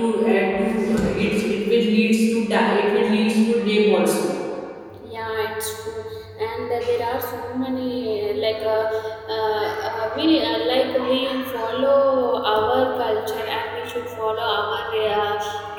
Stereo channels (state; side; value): identical; both; correlation 1.00